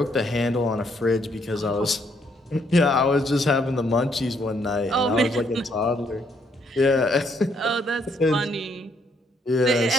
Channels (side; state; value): both; normal; correlation 0.71